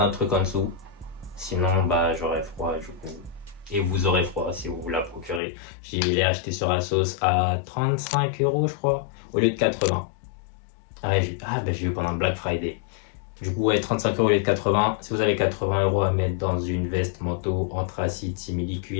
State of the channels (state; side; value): drops out; right; at 5.4 s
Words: un truc en dessous. Sinon, bah, j'aurai froid du coup. Et vous aurez froid si vous la procurez. Je l'ai acheté sur Asos à 35 €, je crois, au lieu de 80. Ah, bah, j'ai eu pendant le Black Friday. Du coup, ouais, 35 € au lieu de 80. Si vous avez 80 € à mettre dans une veste manteau anthracite simili